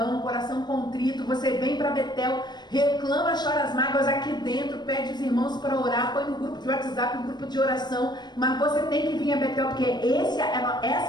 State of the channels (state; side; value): late; right; 0.21 ms